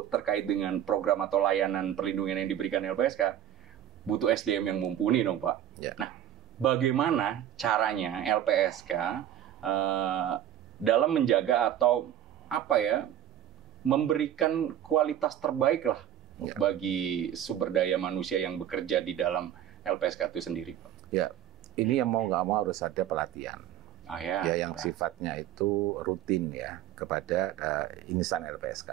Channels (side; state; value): left; quieter; 11.0 dB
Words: terkait dengan program atau layanan perlindungan yang diberikan LPSK, butuh SDM yang mumpuni dong, Pak. Ya. Nah, bagaimana caranya LPSK dalam menjaga atau memberikan kualitas terbaik lah bagi sumber daya manusia yang bekerja di dalam LPSK itu sendiri, Pak? Ya, ini yang mau nggak mau harus ada pelatihan. Yang sifatnya itu rutin ya kepada insan LPSK.